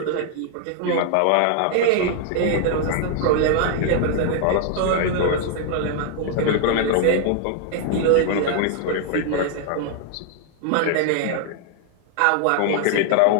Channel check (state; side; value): different; both; correlation 0.00